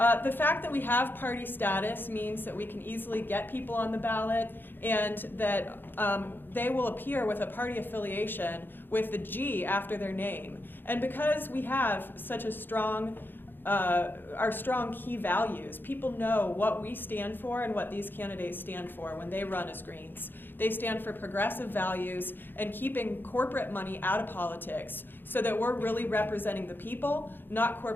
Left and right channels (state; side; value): late; right; 0.096 ms